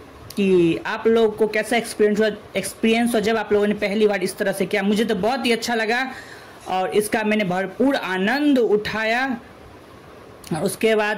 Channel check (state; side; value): identical; both; correlation 1.00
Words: कि आप लोगों को कैसा एक्सपीरियंस हो जब आप लोगों ने पहली बार इस तरह से किया। मुझे तो बहुत ही अच्छा लगा और इसका मैंने भरपूर आनंद उठाया। और उसके